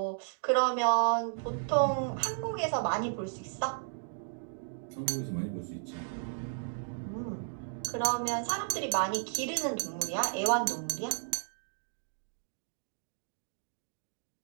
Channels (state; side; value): silent; left; digital silence